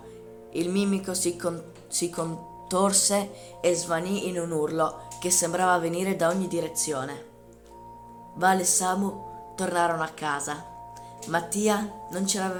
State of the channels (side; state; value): both; identical; correlation 1.00